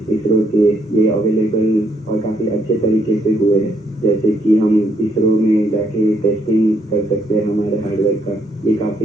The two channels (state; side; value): normal; both; correlation 0.73